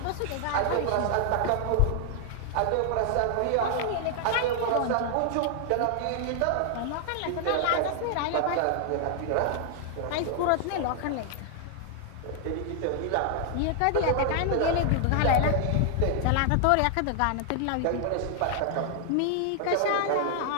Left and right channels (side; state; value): both; different; correlation 0.00